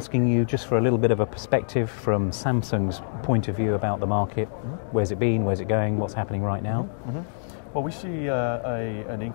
you just for a little bit of a perspective from Samsung's point of view about the market. Where's it been? Where's it going? What's happening right now? Well, we see an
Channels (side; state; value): right; silent; digital silence